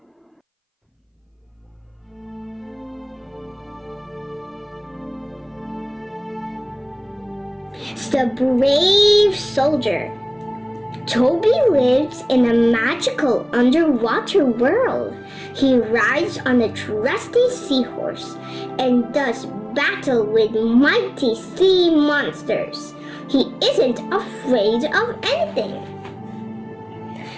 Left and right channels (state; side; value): identical; both; correlation 1.00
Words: The Brave Soldier. Toby lives in a magical underwater world. He rides on a trusty seahorse and does battle with mighty sea monsters. He isn't afraid of anything.